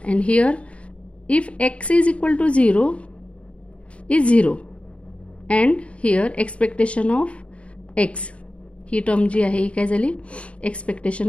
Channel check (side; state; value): right; late; 0.062 ms